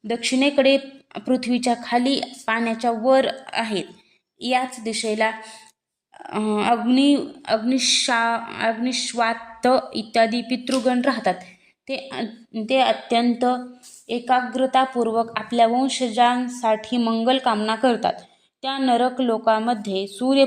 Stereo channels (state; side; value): identical; both; correlation 1.00